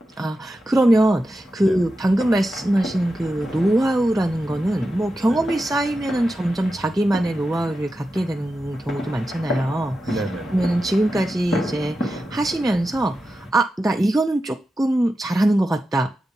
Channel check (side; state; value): both; normal; correlation 0.91